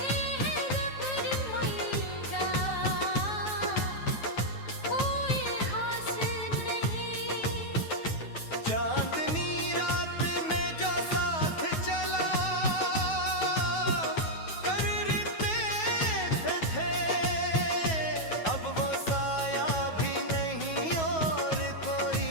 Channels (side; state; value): right; late; 9.3 ms